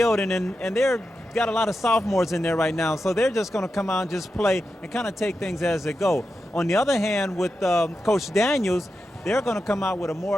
and they're got a lot of sophomores in there right now, so they're just going to come out and just play and kind of take things as they go. On the other hand, with Coach Daniels, they're going to come out with a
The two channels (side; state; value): both; normal; correlation 0.89